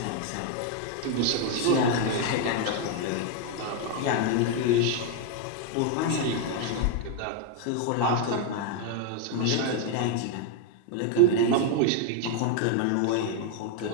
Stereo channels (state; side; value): different; both; correlation 0.01